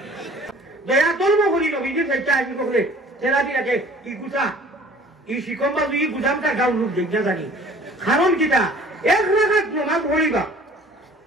দয়া ধর্ম করি নবীজির ফেলতে আসি করে তেরাদি রাখে ই গুছা ই শিকম্বা দুই গুছামটা গাও লোক দেখনা জানি কারণ কিটা 1 রাকাত নামাজ পড়িবা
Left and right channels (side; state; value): both; normal; correlation 0.50